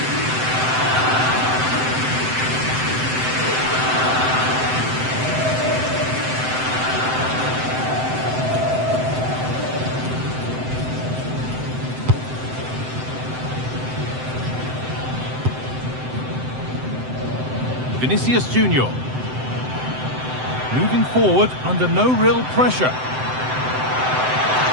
Vinicius Junior. Moving forward under no real pressure.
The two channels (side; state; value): left; late; 7.8 ms